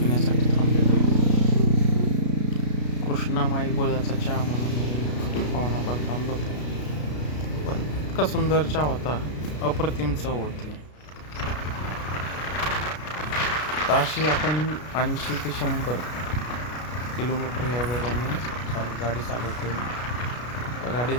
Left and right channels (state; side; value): late; right; 33 ms